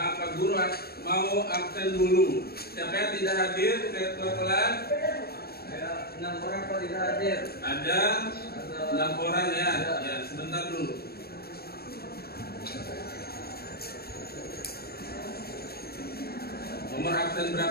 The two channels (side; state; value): right; late; 0.45 ms